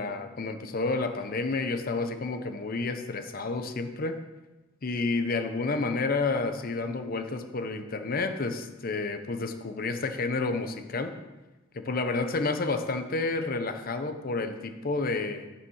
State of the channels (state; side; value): quieter; right; 3.1 dB